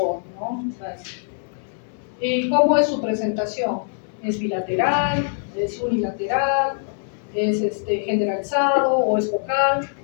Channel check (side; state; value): right; silent; 63 dB below the other